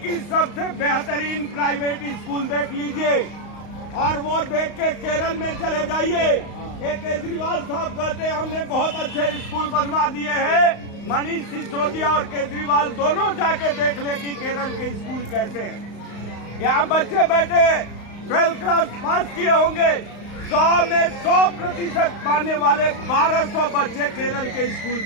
सबसे बेहतरीन प्राइवेट स्कूल देख लीजिए और वो देख के केरल में चले जाइए। एक केजरीवाल साहब कहते हैं हमने बहुत अच्छे स्कूल बनवा दिए हैं। मनीष सिसोदिया और केजरीवाल दोनों जाके देख ले कि केरल के स्कूल कैसे हैं। यहाँ बच्चे बैठे 12th क्लास पास किए होंगे, 100 में 100% पाने वाले 1200 बच्चे केरल के स्कूल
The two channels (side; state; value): right; late; 35 ms